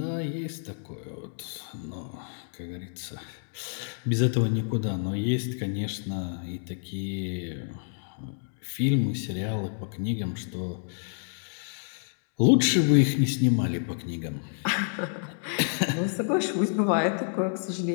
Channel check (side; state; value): right; silent; digital silence